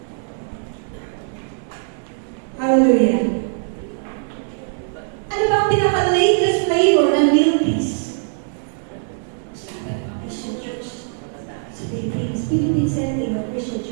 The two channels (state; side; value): silent; left; 58 dB below the other